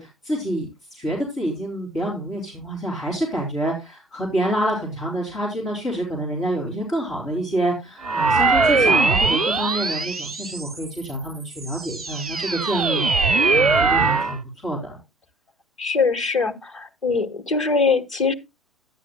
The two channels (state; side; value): normal; both; correlation 0.56